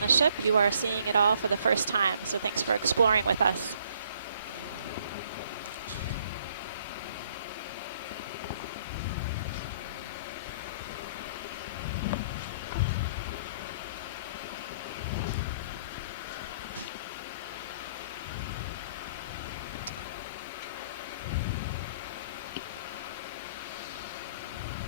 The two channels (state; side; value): inverted; both; correlation -0.62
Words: ship, you are seeing it all for the first time. So thanks for exploring with us.